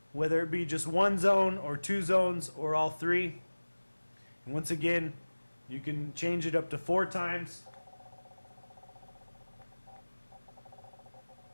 whether it be just one zone or two zones or all three. And once again, you can change it up to 4 times.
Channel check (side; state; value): both; inverted; correlation -1.00